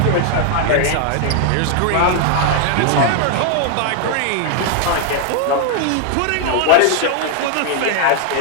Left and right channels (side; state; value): both; different; correlation 0.00